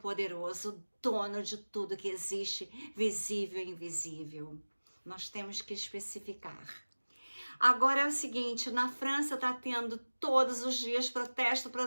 o dono de tudo que existe, visível e invisível. Nós temos que especificar. Agora é o seguinte, na França está tendo todos os dias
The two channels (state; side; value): inverted; both; correlation -1.00